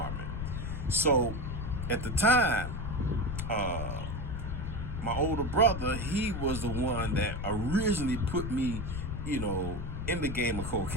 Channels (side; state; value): left; noise; rumble, 4 dB below the sound